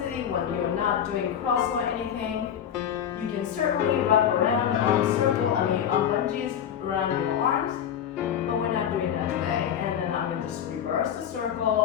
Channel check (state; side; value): quieter; right; 9.2 dB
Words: when you're not doing cross or anything. You can certainly wrap around the arm circle, arm bungees around your arms, but we're not doing that today. And then I'm gonna just reverse the